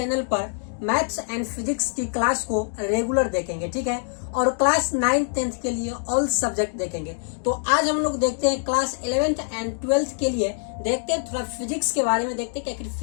पर मैथ्स एंड फिजिक्स की क्लास को रेगुलर देखेंगे, ठीक है। और क्लास 9th 10th के लिए ऑल सब्जेक्ट देखेंगे। तो आज हम लोग देखते हैं क्लास 11th एंड 12th के लिए, देखते हैं थोड़ा फिजिक्स के बारे में, देखते हैं कि आखिर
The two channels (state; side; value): silent; right; 62 dB below the other